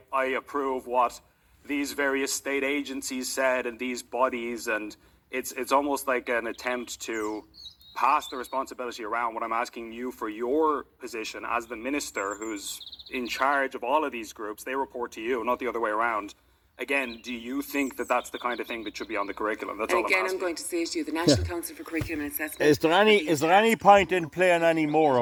approve what these various state agencies said and these bodies. And it's almost like an attempt to pass the responsibility around. What I'm asking you for your position as the minister who's in charge of all of these groups, they report to you, not the other way around. Again, do you think that that's the kind of thing that should be on the curriculum? That's all I'm asking. I'm going to say to you, the National Council for Curriculum and Assessment. Is there any point in playing any more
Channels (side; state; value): both; identical; correlation 1.00